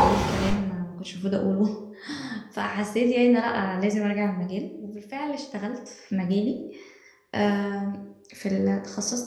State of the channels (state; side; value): identical; both; correlation 1.00